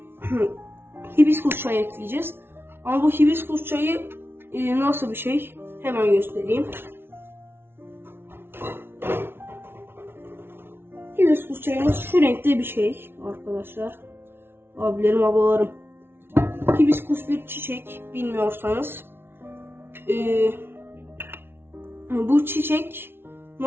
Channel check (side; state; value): left; late; 0.11 ms